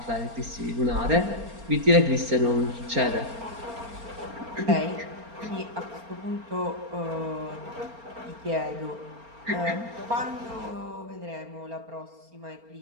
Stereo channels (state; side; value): late; left; 4.3 ms